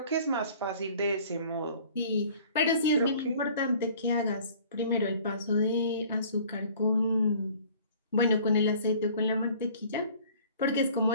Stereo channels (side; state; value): both; inverted; correlation -0.51